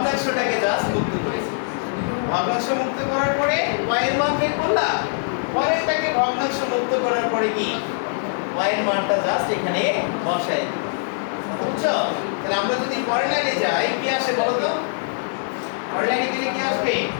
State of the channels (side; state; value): right; silent; 61 dB below the other